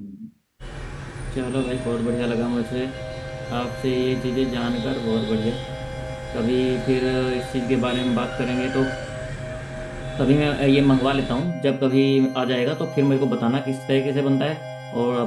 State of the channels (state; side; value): identical; both; correlation 1.00